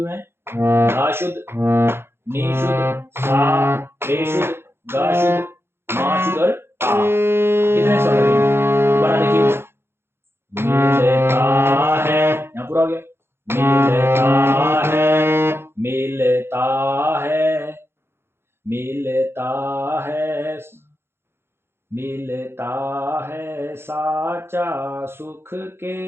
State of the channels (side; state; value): left; late; 0.11 ms